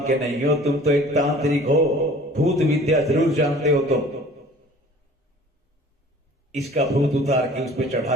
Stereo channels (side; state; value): both; normal; correlation 0.48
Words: के नहीं हो, तुम तो एक तांत्रिक हो, भूत विद्या जरूर जानते हो तुम। इसका भूत उतार के उस पर